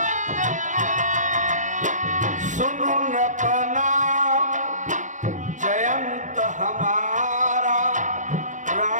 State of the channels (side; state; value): left; late; 0.36 ms